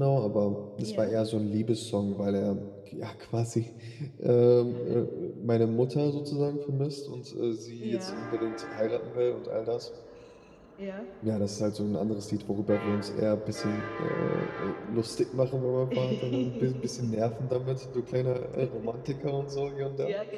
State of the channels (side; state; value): both; identical; correlation 1.00